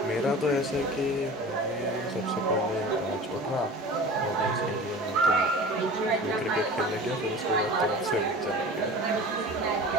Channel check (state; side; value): normal; both; correlation 0.38